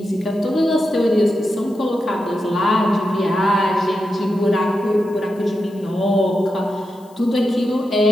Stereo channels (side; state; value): left; noise; hiss, 29 dB below the sound